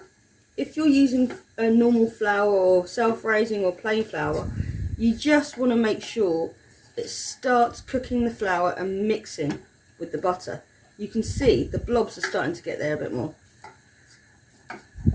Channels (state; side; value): identical; both; correlation 1.00